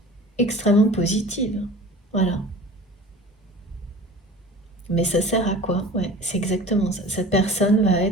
extrêmement positive. Voilà. Mais ça sert à quoi? Ouais, c'est exactement ça. Cette personne va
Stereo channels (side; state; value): both; normal; correlation 0.40